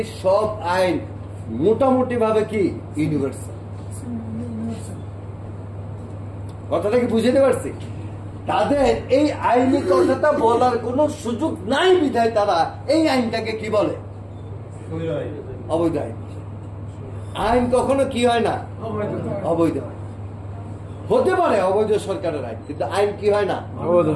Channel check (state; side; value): identical; both; correlation 1.00